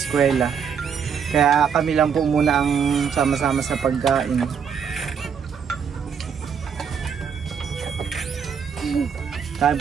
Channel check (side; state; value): left; quieter; 7.0 dB